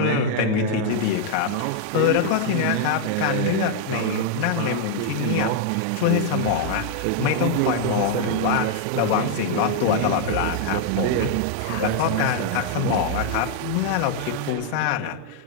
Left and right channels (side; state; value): both; different; correlation 0.00